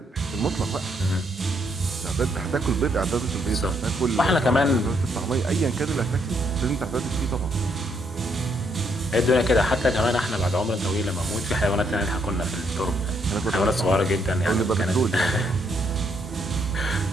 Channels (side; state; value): both; normal; correlation 0.73